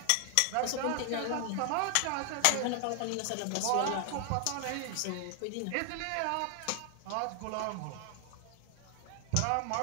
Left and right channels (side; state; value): both; different; correlation 0.00